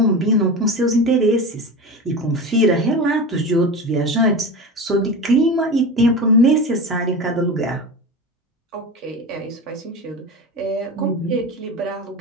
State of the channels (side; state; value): both; normal; correlation 0.26